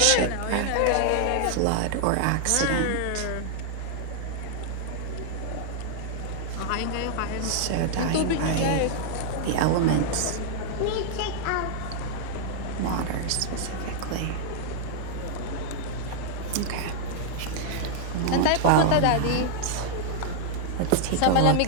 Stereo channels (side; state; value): both; different; correlation -0.01